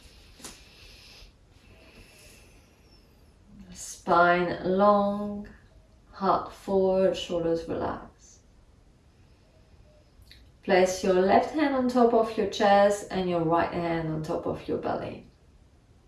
Spine long, heart forward, shoulders relaxed. Place your left hand on top of your chest and your right hand on top of your belly.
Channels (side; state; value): both; identical; correlation 1.00